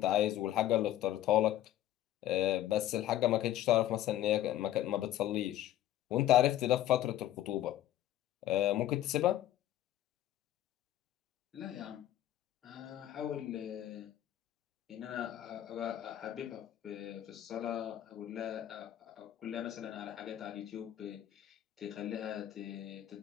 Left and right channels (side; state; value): right; quieter; 13.0 dB